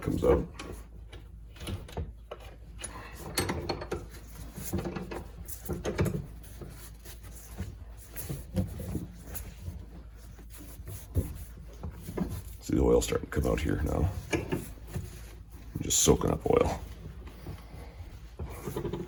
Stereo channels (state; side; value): identical; both; correlation 1.00